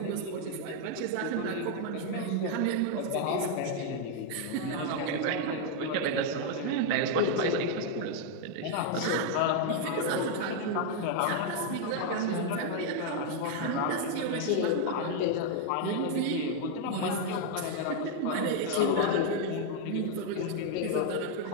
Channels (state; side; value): different; both; correlation 0.00